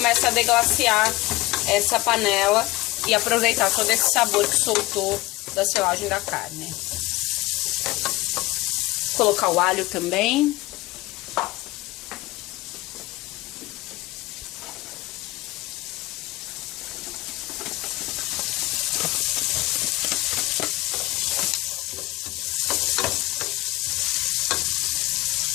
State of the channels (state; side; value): quieter; right; 20.2 dB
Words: a deglaciar essa panela e aproveitar todo esse sabor que soltou da selagem da carne. Vou colocar o alho também.